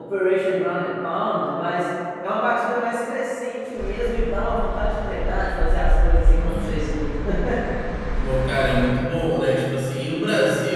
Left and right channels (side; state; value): both; identical; correlation 1.00